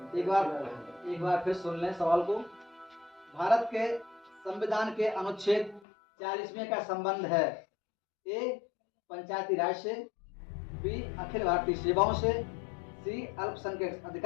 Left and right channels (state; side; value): drops out; right; at 5.8 s